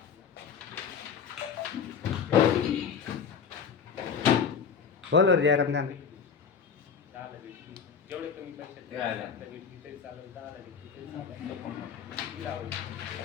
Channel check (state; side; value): quieter; right; 6.5 dB